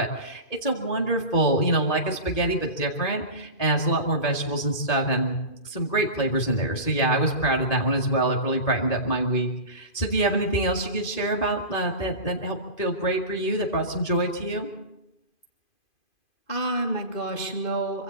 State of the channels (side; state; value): right; late; 2.5 ms